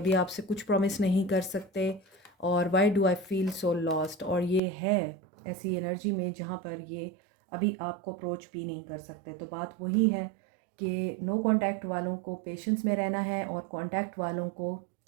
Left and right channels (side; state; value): left; drops out; at 4.6 s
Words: आपसे कुछ प्रॉमिस नहीं कर सकते। और why do I feel so lost, और ये है ऐसी एनर्जी में जहाँ पर ये अभी आपको अप्रोच भी नहीं कर सकते। तो बात वही है कि नो कांटेक्ट वालों को पेशेंस में रहना है और कांटेक्ट वालों को